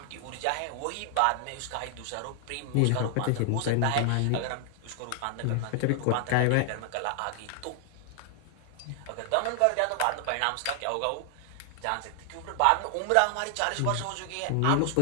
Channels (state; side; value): different; both; correlation 0.00